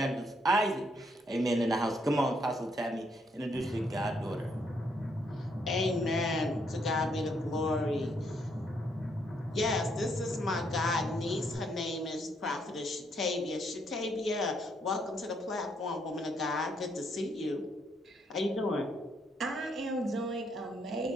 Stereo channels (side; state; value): both; normal; correlation 0.73